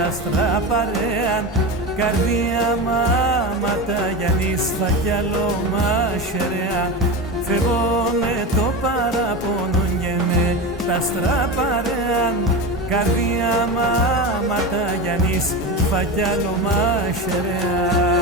άστρα παρέαν, καρδία μάματα Γιάννης φακιαλό μαχαιρέα. Φεύγω με το παραπονό και με τα άστρα παρέαν, καρδία μάματα Γιάννης φακιαλό μαχαιρέα.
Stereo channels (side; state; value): both; normal; correlation 0.22